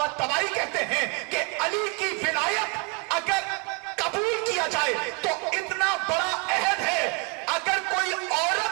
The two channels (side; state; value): left; quieter; 34.3 dB